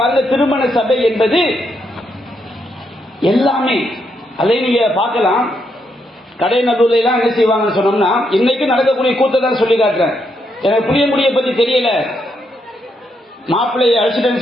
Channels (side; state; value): both; normal; correlation 0.79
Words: திருமண சபை என்பது எல்லாமே அதை நீங்க பார்க்கலாம். கடை நடுவில் எல்லாம் என்ன செய்வாங்கன்னு சொன்னோம்னா, இன்னைக்கு நடக்கக்கூடிய கூத்தை தான் சொல்லி காட்டுறேன். எனக்கு புளியங்குடியை பத்தி தெரியல, மாப்பிள்ளையை